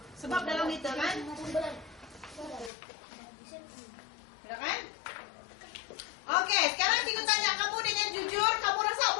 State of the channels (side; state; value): right; drops out; at 2.7 s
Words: Sebab dalam liter kan. Sudah kan? Oke, sekarang cikgu tanya kamu dengan jujur, kamu rasa